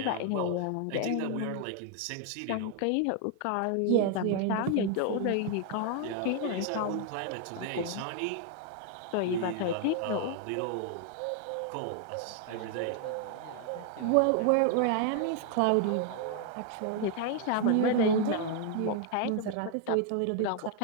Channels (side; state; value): both; different; correlation 0.00